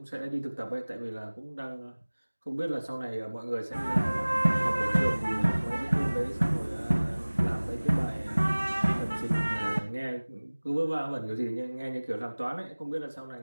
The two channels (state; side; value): inverted; both; correlation -1.00